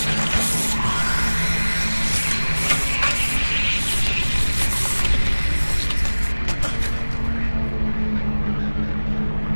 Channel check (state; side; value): inverted; both; correlation -1.00